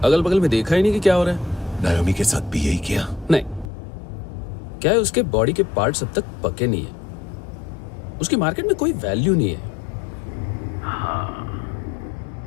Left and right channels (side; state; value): right; drops out; at 3.7 s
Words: अगल बगल में देखा ही नहीं कि क्या हो रहा है। नायोमी के साथ भी यही किया? नहीं, क्या है उसके बॉडी के पार्ट्स अब तक पके नहीं है। उसकी मार्केट में कोई वैल्यू नहीं है। हाँ,